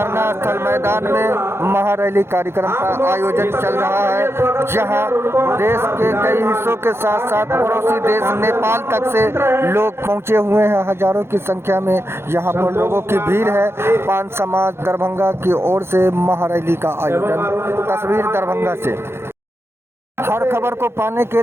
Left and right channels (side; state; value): left; late; 0.12 ms